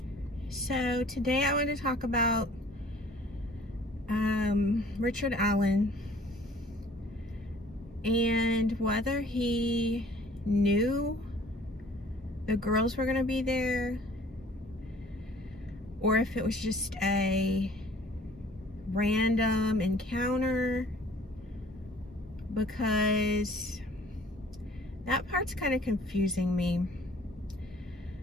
so today I want to talk about Richard Allen and whether he knew the girls were going to be there or if it was just a random encounter, because that part's kind of confusing me.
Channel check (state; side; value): normal; both; correlation 0.53